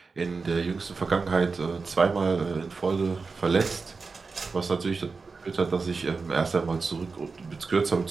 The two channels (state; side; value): quieter; left; 4.4 dB